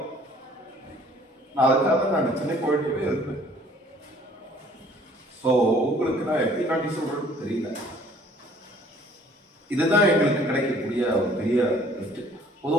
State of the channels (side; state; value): both; normal; correlation 0.56